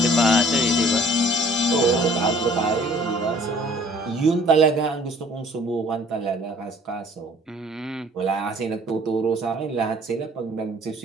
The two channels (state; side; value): normal; both; correlation 0.55